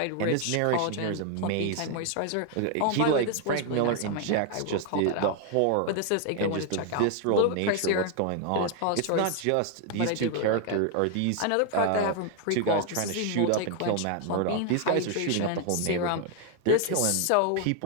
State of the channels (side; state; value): both; different; correlation 0.00